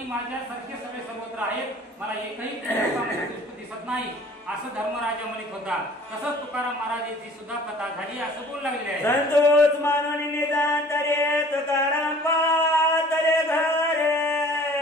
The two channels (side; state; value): both; normal; correlation 0.50